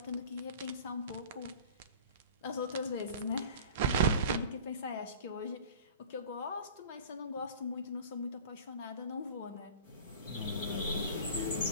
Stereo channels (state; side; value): inverted; both; correlation -0.41